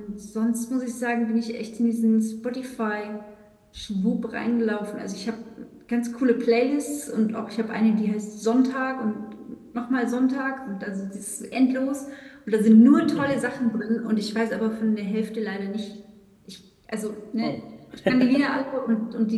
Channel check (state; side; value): identical; both; correlation 1.00